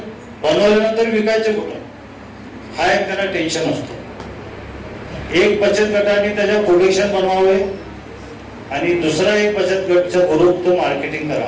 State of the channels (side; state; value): both; identical; correlation 1.00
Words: बनवल्यानंतर विकायचे कुठं हा एक त्यांना टेन्शन असतो. एक बचत गटाने त्याच्या प्रोडक्शन बनवावे आणि दुसरा एक बचत गटचा ग्रुप तो मार्केटिंग